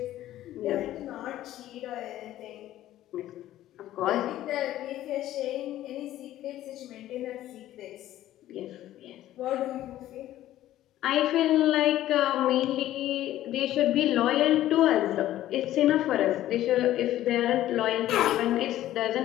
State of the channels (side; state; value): right; quieter; 13.7 dB